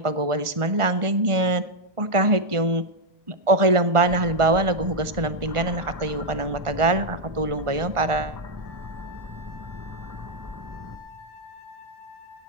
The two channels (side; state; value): left; late; 1.4 ms